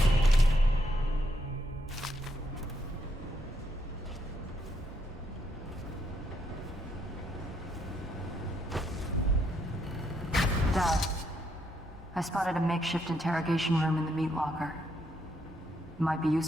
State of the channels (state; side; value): normal; both; correlation 0.76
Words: Dad, I spotted a makeshift interrogation room in the meat locker. It might be